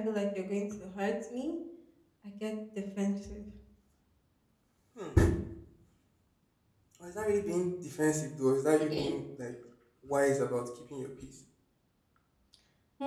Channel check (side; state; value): both; identical; correlation 1.00